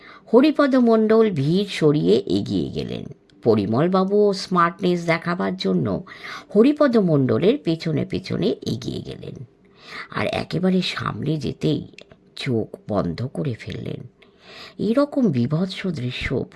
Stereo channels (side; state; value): both; identical; correlation 1.00